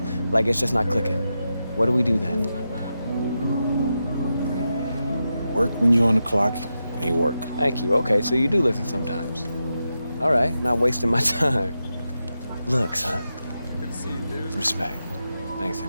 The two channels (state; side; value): inverted; both; correlation -0.89